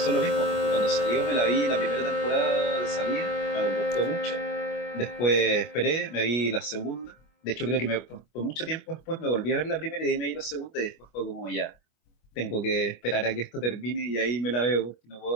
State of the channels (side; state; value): right; late; 25 ms